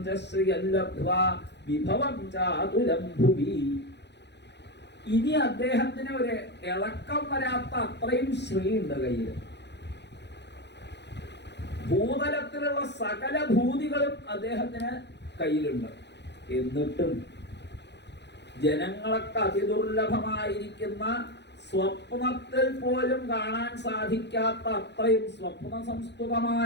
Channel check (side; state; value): right; late; 0.50 ms